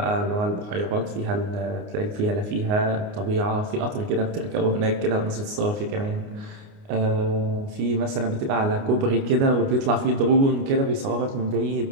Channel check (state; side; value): late; left; 29 ms